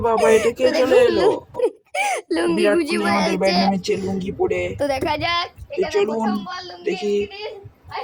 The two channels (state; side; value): identical; both; correlation 1.00